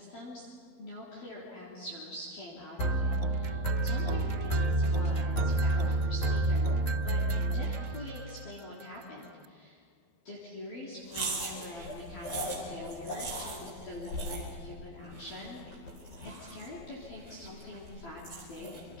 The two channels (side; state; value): right; late; 12 ms